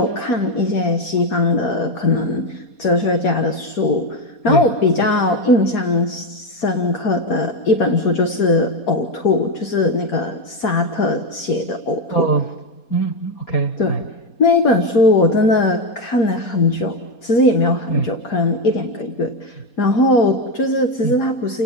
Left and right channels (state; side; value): late; right; 4.2 ms